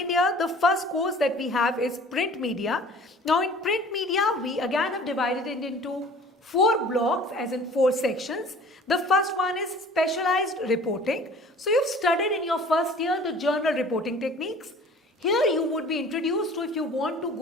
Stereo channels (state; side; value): normal; both; correlation 0.48